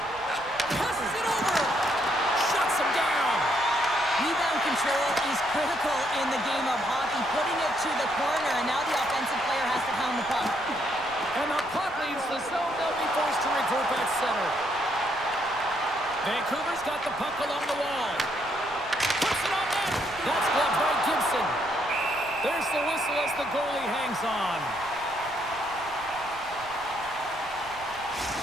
Passes it over. Shuts him down. Rebound control is critical in the game of hockey. Putting it to the corner, and now the offensive player has to pound the puck. And the puck leaves the zone. They'll be forced to regroup at center. Vancouver's got the puck along the wall. Puts it on net. That's gloved by Gibson. There's the whistle as the goalie hangs on.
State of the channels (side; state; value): right; noise; rumble, 21 dB below the sound